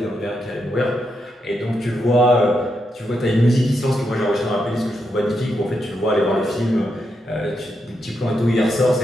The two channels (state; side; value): normal; both; correlation 0.83